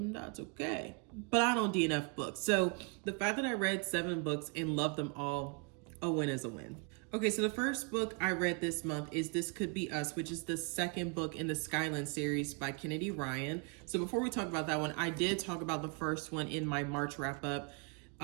That's okay. But I don't DNF books. So the fact that I read 7 books and loved them all, a win is a win. Okay, so the first book I read this month is This Could Be Us, which is the 2nd book in the Skyland series by Kennedy Ryan. So before we talk about that one, I did talk about the first one in my March wrap up.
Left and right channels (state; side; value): quieter; left; 34.1 dB